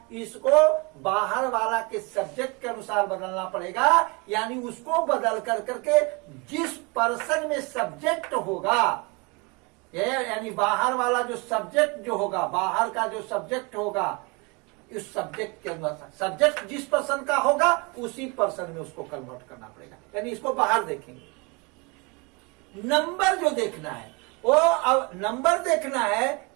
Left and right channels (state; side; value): quieter; left; 29.0 dB